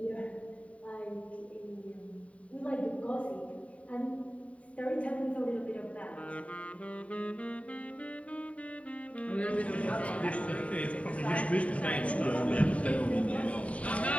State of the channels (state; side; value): late; right; 0.066 ms